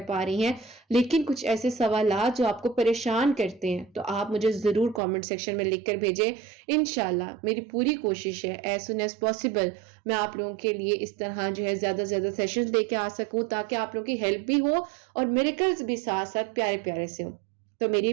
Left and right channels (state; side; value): drops out; left; at 5.0 s